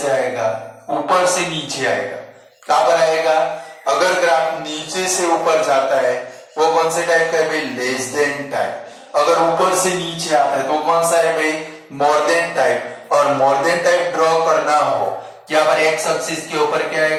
आएगा, ऊपर से नीचे आएगा। कहां पर आएगा, अगर ग्राफ नीचे से ऊपर जाता है वो कौन से टाइप का है भाई, लेस देन टाइप। अगर ऊपर से नीचे आता है तो कौन सा है भाई, मोर देन टाइप। और मोर देन टाइप ड्रॉ करना हो, यहाँ पर एक्स एक्सिस के ऊपर क्या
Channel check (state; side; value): identical; both; correlation 1.00